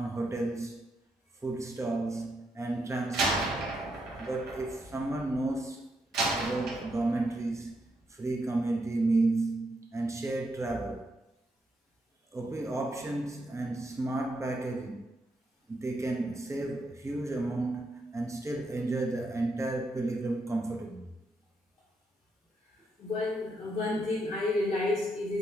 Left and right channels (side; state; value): both; normal; correlation 0.80